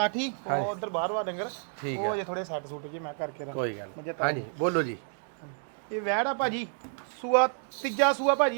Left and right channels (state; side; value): silent; left; 58 dB below the other